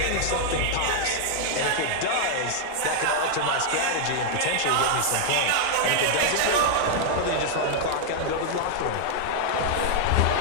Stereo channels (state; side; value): different; both; correlation 0.00